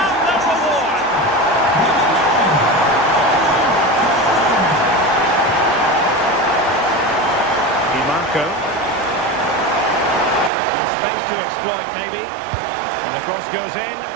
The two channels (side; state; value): left; drops out; at 10.5 s